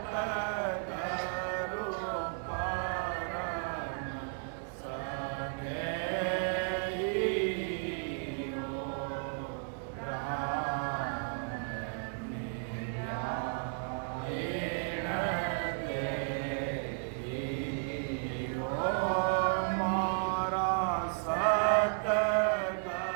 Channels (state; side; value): silent; left; 55 dB below the other